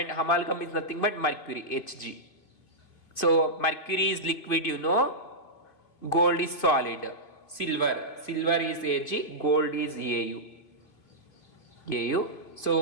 amalgam is nothing but mercury, Hg. So mercury is liquid, you know. Gold is solid. Silver is Ag, gold is Au.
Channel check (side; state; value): right; late; 2.3 ms